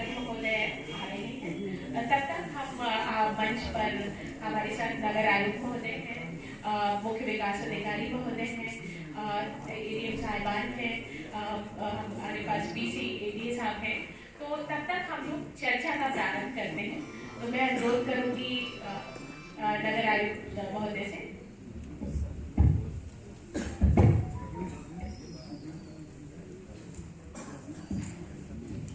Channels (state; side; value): identical; both; correlation 1.00